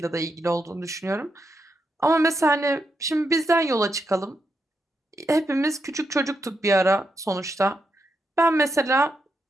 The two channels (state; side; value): normal; both; correlation 0.83